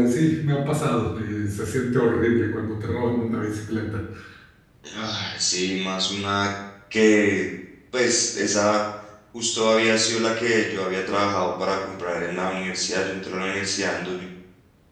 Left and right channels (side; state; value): both; identical; correlation 1.00